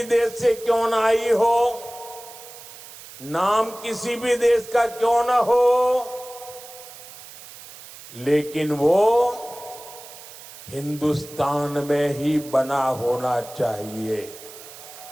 देश से क्यों ना आई हो, नाम किसी भी देश का क्यों ना हो, लेकिन वो हिंदुस्तान में ही बना होना चाहिए।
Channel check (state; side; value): noise; right; hiss, 17 dB below the sound